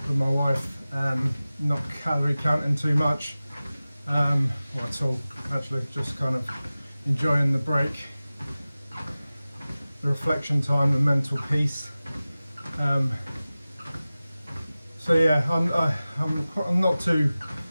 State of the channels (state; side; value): inverted; both; correlation -0.97